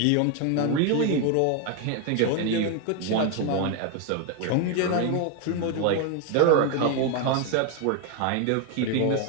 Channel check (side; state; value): both; different; correlation 0.01